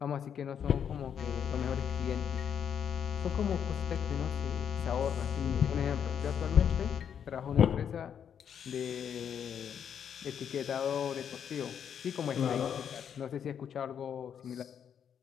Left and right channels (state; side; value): quieter; right; 8.2 dB